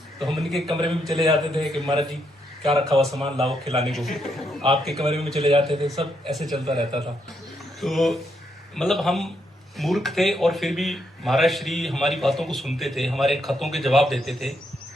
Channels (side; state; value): both; normal; correlation 0.78